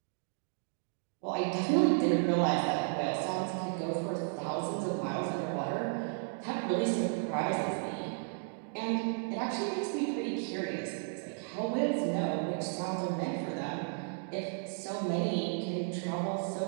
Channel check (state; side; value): silent; left; 55 dB below the other